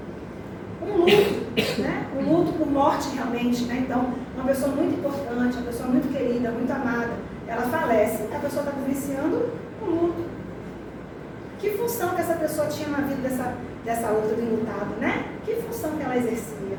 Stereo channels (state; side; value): identical; both; correlation 1.00